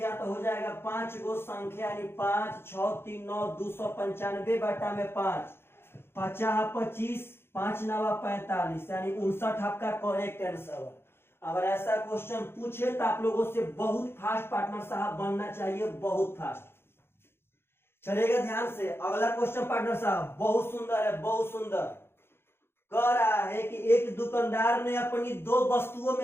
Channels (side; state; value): right; late; 0.11 ms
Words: तो हो जाएगा 5 गो संख्या, यानी 5 6 3 9 295 बाटा में 5 50 25 5 9 45, यानी 59 आपका करेक्ट आंसर। अगर ऐसा क्वेश्चन पूछे तो आप लोगों से बहुत फास्ट पार्टनर साहब बनना चाहिए, बहुत फास्ट। चलेगा ध्यान से अगला क्वेश्चन पार्टनर साहब, बहुत सुंदर है, बहुत सुंदर। कह रहा है कि एक दुकानदार ने अपनी 2 वस्तुओं